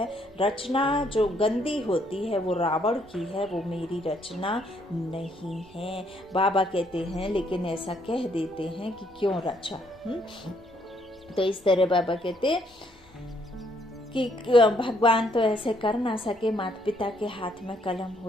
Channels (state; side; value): normal; both; correlation 0.70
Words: रचना जो गंदी होती है वो रावण की है, वो मेरी रचना नहीं है। बाबा कहते हैं लेकिन ऐसा कह देते हैं कि क्यों रचा। तो इस तरह बाबा कहते कि भगवान तो ऐसे कर ना सके। माता पिता के हाथ में कलम